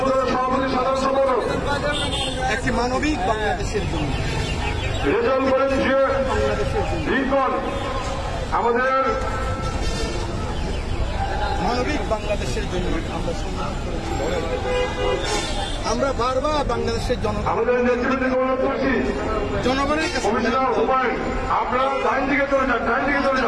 সভাপতি সাধারণ সম্পাদক, একটি মানবিক বাংলাদেশের জন্য রেজাল্ট করেন যে লিঙ্কন, আমাদের মানবিক বাংলাদেশের জন্য আমরা সংগ্রাম করেছি। আমরা বারবার বাংলাদেশের আমাদের নেতৃত্বে অনুরোধ করছি, জনগণের কাছে কমিশনার হুমায়ুন, আপনারা ডাইন দিকে চলে যান, ডাইন দিকে চলে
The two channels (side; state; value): both; identical; correlation 1.00